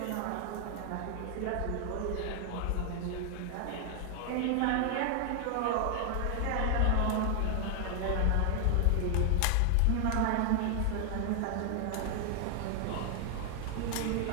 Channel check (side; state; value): both; different; correlation 0.00